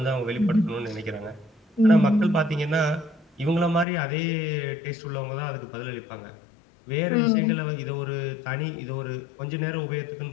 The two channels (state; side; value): drops out; right; at 3.9 s